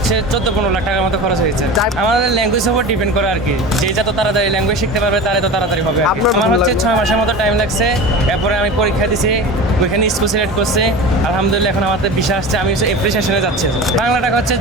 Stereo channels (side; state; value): both; normal; correlation 0.32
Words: 14-15 লাখ টাকার মতো খরচ হয়েছে। আমাদের ল্যাঙ্গুয়েজ উপর ডিপেন্ড করে আর কি, যে যত তাড়াতাড়ি ল্যাঙ্গুয়েজ শিখতে পারবে তারে তো তাড়াতাড়ি হবে। আমার হচ্ছে 6 মাসের মতো টাইম লাগছে। এরপরে আমি পরীক্ষা দিছি, ওইখানে স্কুল সিলেক্ট করছে। আলহামদুলিল্লাহ এখন আমাদের ভিসা আসছে। আমি এপ্রিসিয়েশনে যাচ্ছি। বাংলা টাকা হচ্ছে